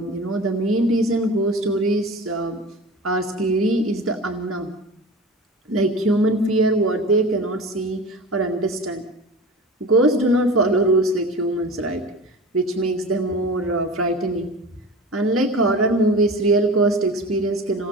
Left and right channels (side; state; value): both; normal; correlation 0.34